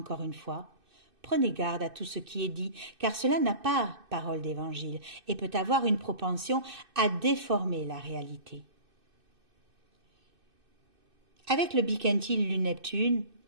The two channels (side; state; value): left; late; 2.6 ms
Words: une fois, prenez garde à tout ce qui est dit, car cela n'a pas parole d'évangile et peut avoir une propension à déformer la réalité. Avec le biquintile Lune-Neptune,